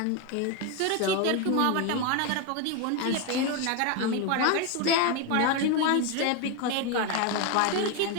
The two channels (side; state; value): both; different; correlation 0.02